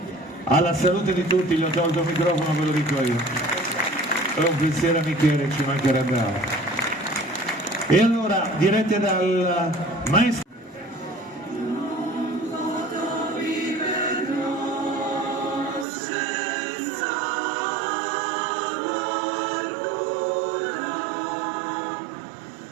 Alla salute di tutti, gli ho tolto il microfono, ve lo dico io. È un pensiero a Michele, ci mancherebbe altro. E allora, dirette dal maestro.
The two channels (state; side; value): drops out; left; at 15.9 s